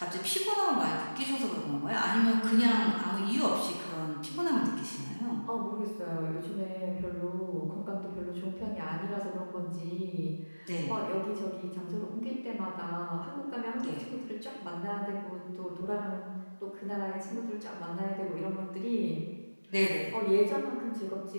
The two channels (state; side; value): inverted; both; correlation -1.00